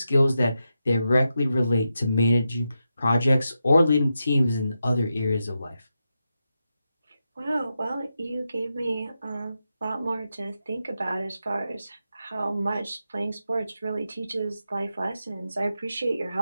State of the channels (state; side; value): inverted; both; correlation -0.88